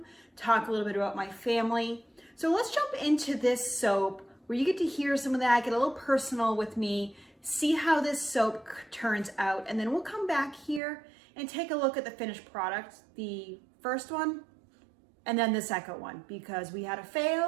talk a little bit about my family. So let's jump into this soap where you get to hear some of that, get a little personal with me, see how this soap turns out, and then we'll come back here and take a look at the finished product, the first one, and then the second one, because we had a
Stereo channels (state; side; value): drops out; left; at 10.8 s